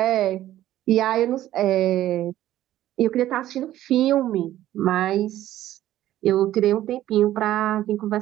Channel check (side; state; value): left; quieter; 13.6 dB